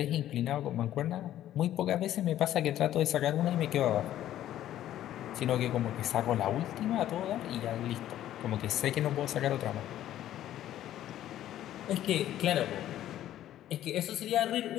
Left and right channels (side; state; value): right; quieter; 12.4 dB